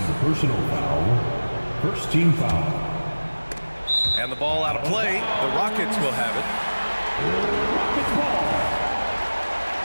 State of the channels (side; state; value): both; inverted; correlation -1.00